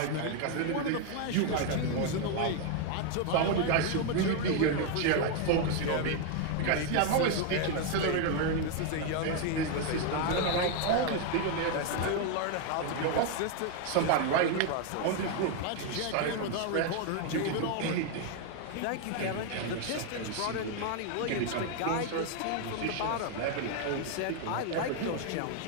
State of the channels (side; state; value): both; different; correlation 0.01